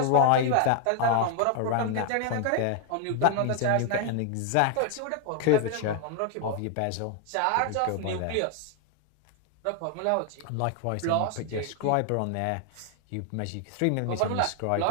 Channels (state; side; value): different; both; correlation 0.00